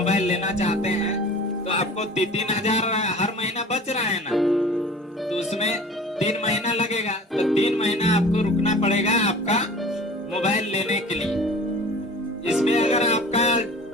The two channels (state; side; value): normal; both; correlation 0.42